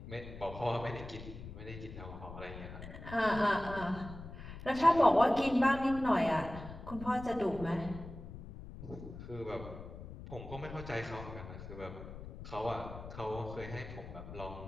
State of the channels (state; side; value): noise; left; rumble, 12 dB below the sound